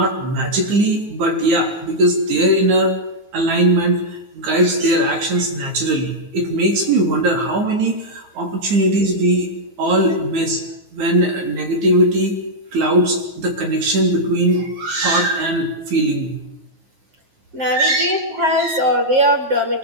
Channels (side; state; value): left; late; 9.5 ms